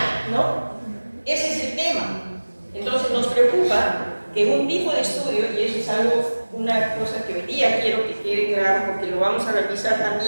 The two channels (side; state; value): both; inverted; correlation -1.00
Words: ¿no? Ese es el tema. Entonces nos preocupa que un tipo de estudio, y eso es algo, una cosa que hoy día quiero que quede claro, porque lo vamos a revisar